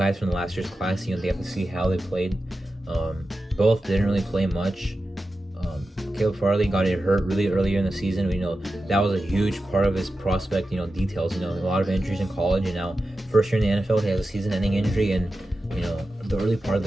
from the last year's class. They have to see how they played. Both didn't really play much. Caleb Farley got hurt really earlier in the season. That was a huge part of his prospect, details. A lot of injuries in college, and now first year in the NFL, he has a season-ending injury in, the early part of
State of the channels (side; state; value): both; normal; correlation 0.92